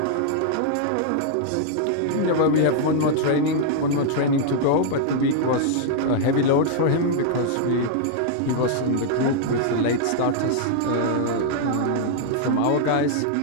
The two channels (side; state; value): both; different; correlation -0.01